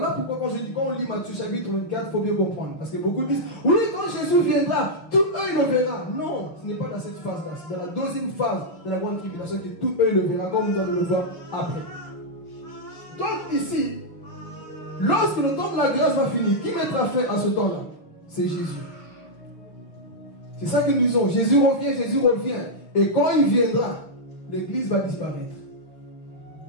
pourquoi quand on lit Matthieu chapitre 24, il faut bien comprendre. Parce que beaucoup disent, oui, quand Jésus viendra, tout œil le verra. Non, ce n'est pas dans cette phase-là. C'est dans la deuxième phase de la grande tribulation que tout œil le verra, comme nous allons le voir après. Donc ici, lorsque le temps de la grâce va finir, qui mettra fin à ce temps-là? C'est Jésus. C'est ça que nous disons. Jésus revient. Et quand il viendra, l'église va disparaître.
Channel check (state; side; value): late; right; 6.0 ms